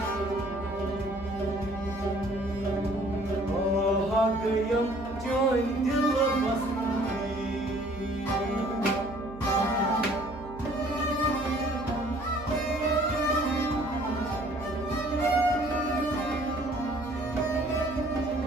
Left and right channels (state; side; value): noise; right; hum, 16 dB below the sound